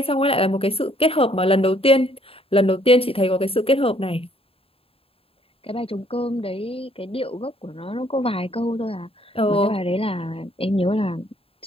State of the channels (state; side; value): late; right; 0.27 ms